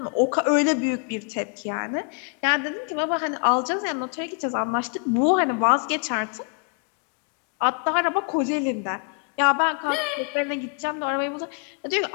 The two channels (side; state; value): right; quieter; 39.7 dB